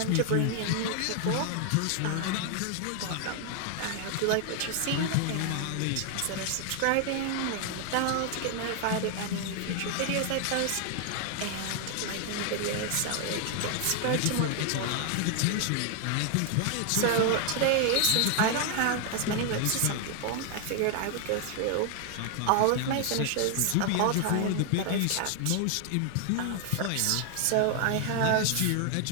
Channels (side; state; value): both; different; correlation 0.00